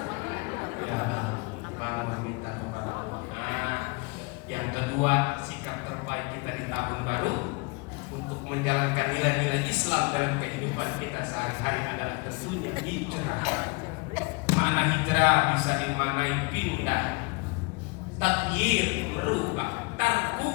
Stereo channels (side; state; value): right; quieter; 29.0 dB